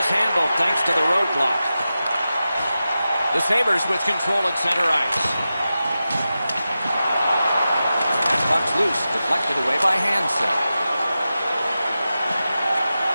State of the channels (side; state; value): both; inverted; correlation -0.93